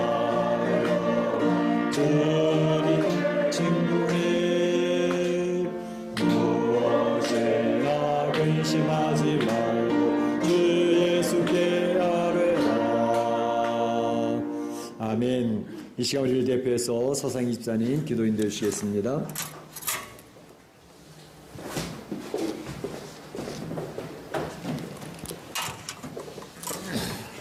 주님 친구해 무엇이나 근심하지 말고 주 예수께 아뢰라. 아멘. 이 시간 우리를 대표해서 서상희 집사님 기도인 되시겠습니다.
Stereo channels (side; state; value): both; identical; correlation 1.00